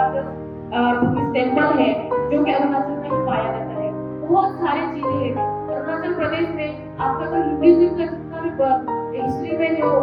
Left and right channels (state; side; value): identical; both; correlation 1.00